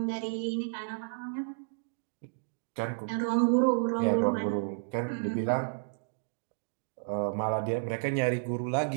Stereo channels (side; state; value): left; silent; digital silence